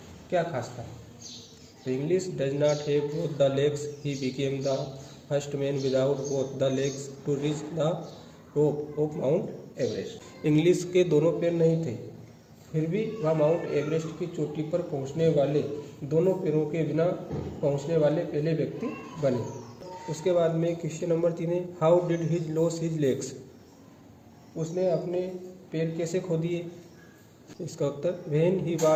क्या खास था। तो Inglis does not have both the legs, he became the first man without both the legs to reach the top of Mount Everest, Inglis के दोनों पैर नहीं थे फिर भी वह माउंट एवरेस्ट की चोटी पर पहुंचने वाले दोनों पैरों के बिना पहुंचने वाले पहले व्यक्ति बने। उसके बाद में क्वेश्चन नंबर 3 है how did his lose his legs, उसने अपने पैर कैसे खो दिए। इसका उत्तर when he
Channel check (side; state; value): both; identical; correlation 1.00